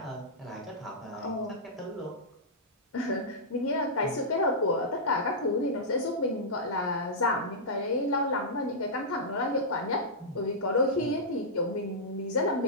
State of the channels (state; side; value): normal; both; correlation -0.13